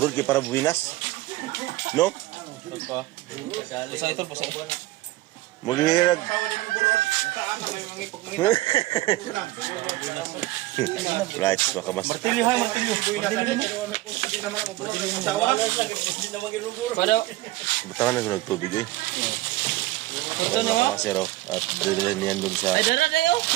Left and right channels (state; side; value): quieter; left; 18.1 dB